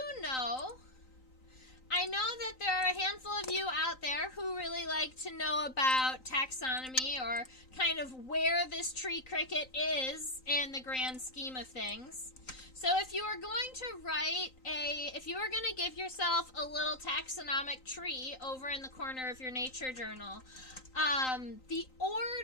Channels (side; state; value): right; late; 3.9 ms